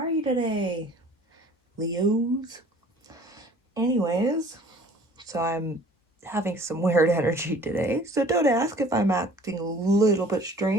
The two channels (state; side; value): normal; both; correlation 0.50